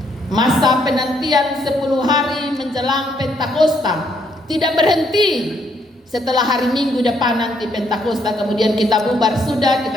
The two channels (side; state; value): both; normal; correlation 0.72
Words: Masa penantian 10 hari menjelang Pentakosta tidak berhenti. Setelah hari Minggu depan nanti Pentakosta, kemudian kita bubar, sudah,